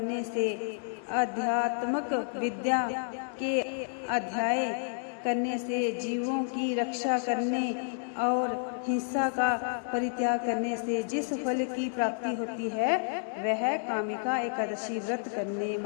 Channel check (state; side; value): silent; right; 58 dB below the other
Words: से, आध्यात्मिक विद्या के अध्याय करने से, जीवों की रक्षा करने और हिंसा का परित्याग करने से जिस फल की प्राप्ति होती है, वह कामिका एकादशी व्रत करने